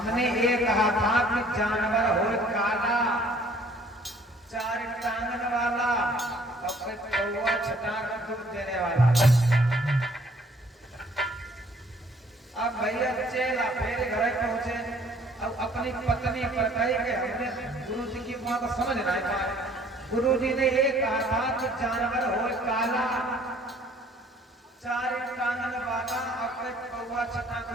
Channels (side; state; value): both; normal; correlation 0.58